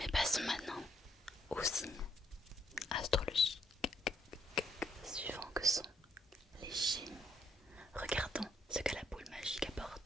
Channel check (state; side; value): normal; both; correlation 0.72